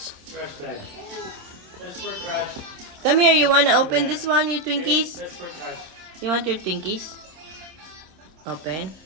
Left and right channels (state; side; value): late; left; 26 ms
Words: Trash bag. That's for trash. Come here. You want to open this one, your Twinkies? That's for trash. You want your Twinkies? Open.